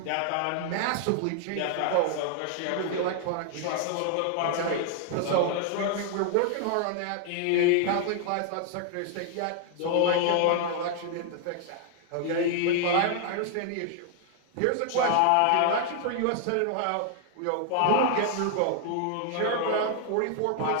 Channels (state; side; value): different; both; correlation 0.00